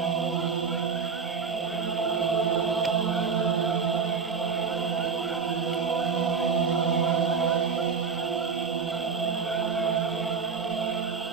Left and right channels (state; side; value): quieter; left; 5.7 dB